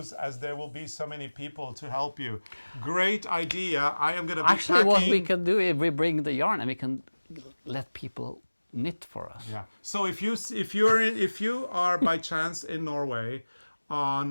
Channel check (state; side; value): inverted; both; correlation -1.00